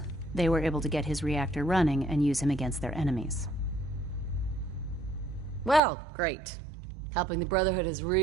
they were able to get his reactor running and use him against their enemies. Well, great. Helping the Brotherhood has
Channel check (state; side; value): drops out; left; at 5.8 s